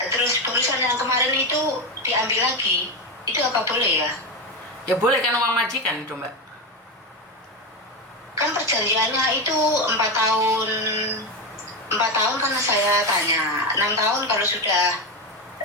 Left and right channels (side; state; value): both; normal; correlation 0.13